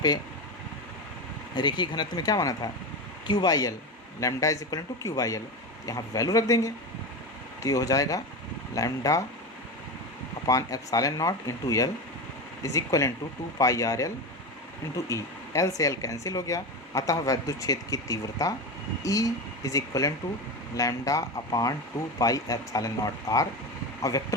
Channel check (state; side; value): normal; both; correlation 0.20